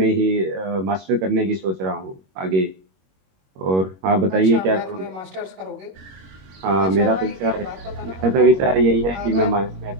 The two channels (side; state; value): left; late; 21 ms